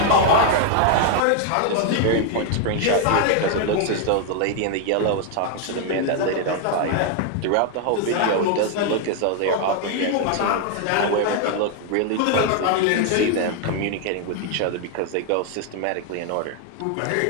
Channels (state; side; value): different; both; correlation 0.00